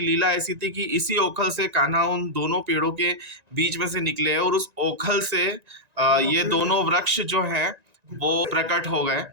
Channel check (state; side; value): late; left; 1.9 ms